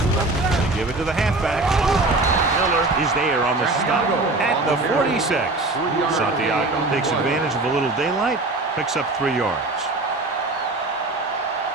give it to the halfback. Miller is there on the stop at the 46. Santiago takes advantage of a little daylight, picks up 3 yards.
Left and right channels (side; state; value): left; quieter; 3.1 dB